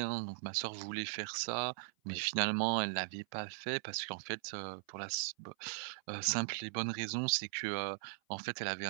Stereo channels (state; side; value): silent; left; 52 dB below the other